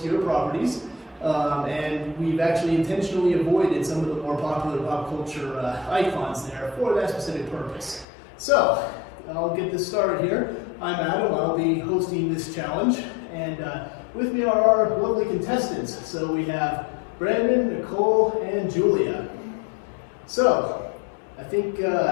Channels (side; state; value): right; drops out; at 8.1 s